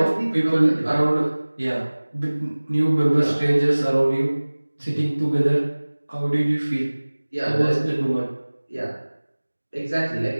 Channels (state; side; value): inverted; both; correlation -1.00